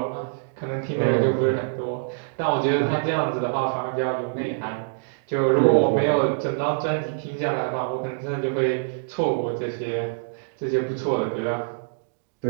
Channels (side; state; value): left; silent; digital silence